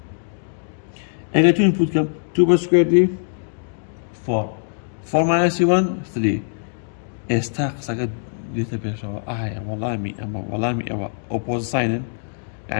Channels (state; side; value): silent; right; digital silence